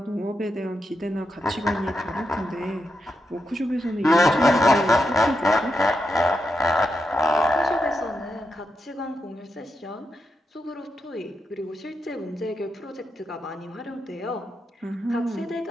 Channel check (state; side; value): normal; both; correlation 0.85